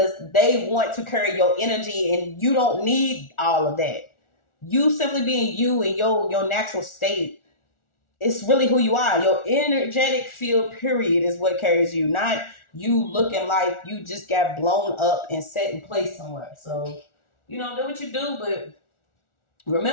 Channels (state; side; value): late; right; 1.4 ms